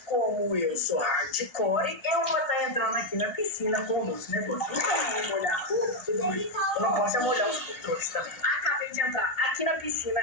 como eu sou hardcore, eu vou estar entrando aqui na piscina com o nosso negócio. Então eu vou molhar tudo bem. Eu não posso molhar os controles também. Acabei de entrar aqui na piscina.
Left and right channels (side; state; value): right; late; 1.6 ms